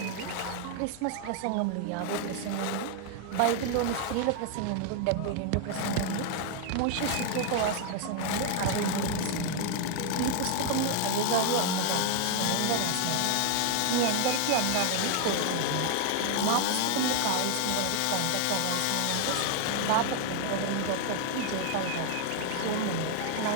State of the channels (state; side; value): different; both; correlation 0.00